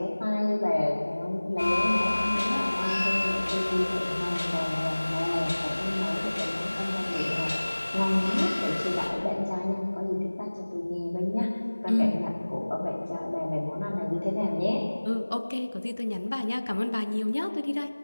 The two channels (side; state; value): both; inverted; correlation -1.00